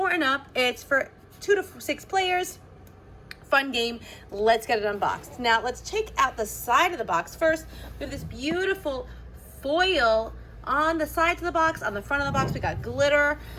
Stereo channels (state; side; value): identical; both; correlation 1.00